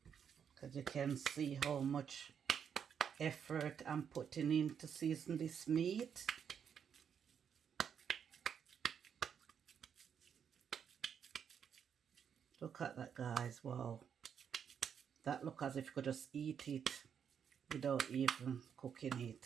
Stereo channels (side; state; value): left; quieter; 7.7 dB